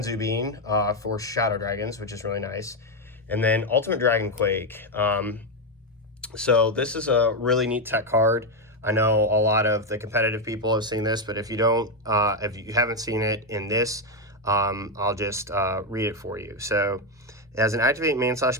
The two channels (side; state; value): both; normal; correlation 0.06